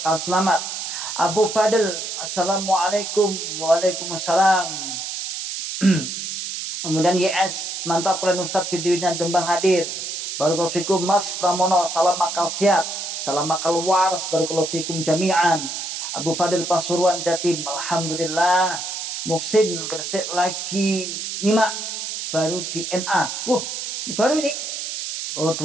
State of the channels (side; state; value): right; noise; hiss, 5 dB below the sound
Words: selamat. Abu Fadil, Assalamualaikum. Waalaikumsalam. Kemudian YS, mantap kalian Ustadz videonya Dembang hadir. Barakallahu fikum Mas Pramono, salam akal sehat. Salam akal waras, barakallahu fikum jami'an. Abu Fadil Pasuruan Jatim, alhamdulillah. Muhsin Gresik lagi nyimak baru di NA. Ini baru ini.